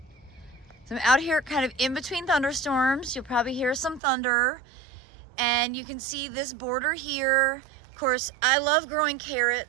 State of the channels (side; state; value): left; drops out; at 4.0 s